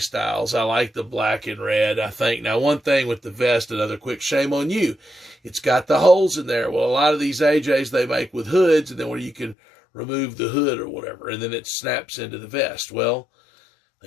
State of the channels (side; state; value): right; drops out; at 9.6 s